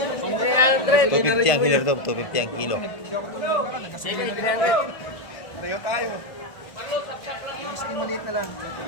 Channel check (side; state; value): right; late; 1.5 ms